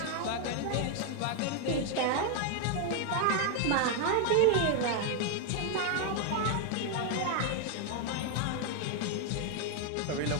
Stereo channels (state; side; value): different; both; correlation 0.00